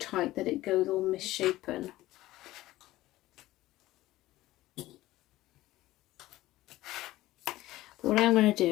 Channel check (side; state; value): right; quieter; 16.5 dB